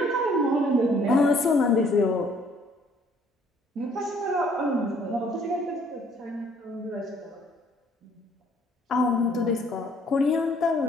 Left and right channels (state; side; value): normal; both; correlation 0.61